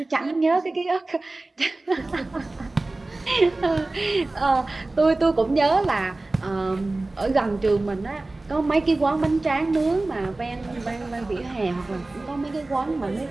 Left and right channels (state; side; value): quieter; left; 3.0 dB